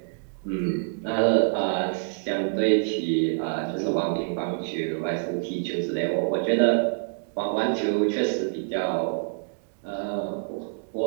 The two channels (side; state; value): left; silent; digital silence